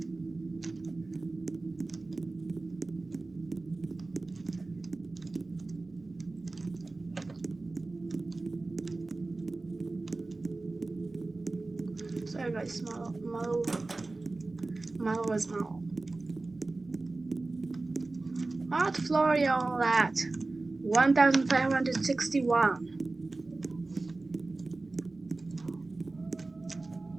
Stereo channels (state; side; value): quieter; left; 3.3 dB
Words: Sorry guys, Malo was Malo. What floor are y'all at? 1561.